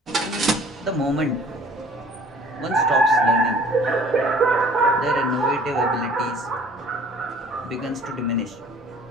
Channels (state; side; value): normal; both; correlation 0.52